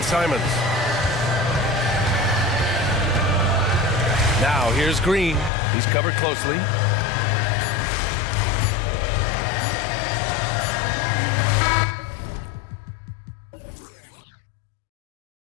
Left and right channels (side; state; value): right; drops out; at 5.5 s